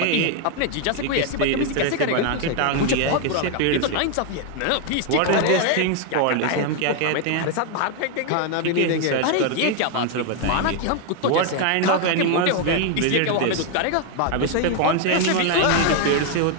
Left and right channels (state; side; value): different; both; correlation 0.01